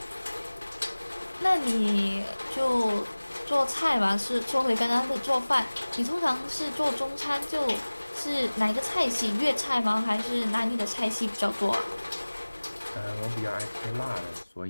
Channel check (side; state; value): both; inverted; correlation -1.00